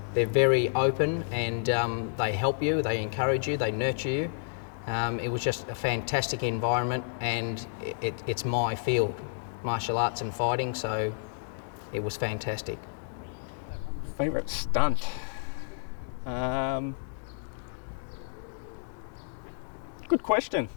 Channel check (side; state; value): right; silent; digital silence